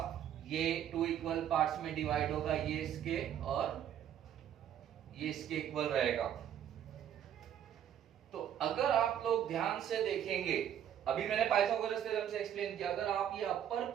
ये टू इक्वल पार्ट्स में डिवाइड होगा, ये इसके और ये इसके इक्वल रहेगा। तो अगर आप लोग ध्यान से देखेंगे, अभी मैंने पाइथागोरस थ्योरम से एक्सप्लेन किया, अगर आप ये अपर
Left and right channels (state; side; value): quieter; left; 10.1 dB